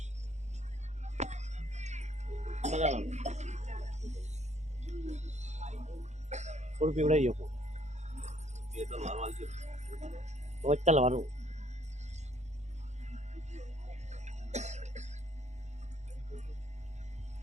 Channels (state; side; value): late; left; 0.33 ms